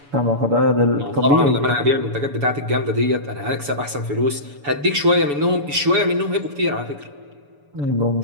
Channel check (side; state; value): left; late; 7.0 ms